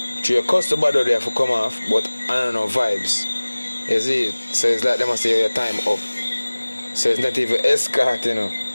to your customer there for come off, but I don't know vibes. You see it? So it's like they must say your time up. So it's not even escort, you know.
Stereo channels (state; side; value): inverted; both; correlation -1.00